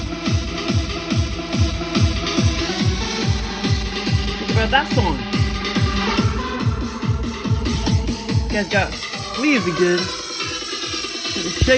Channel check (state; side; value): identical; both; correlation 1.00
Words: Think about that song. You guys got fleas again. Gonna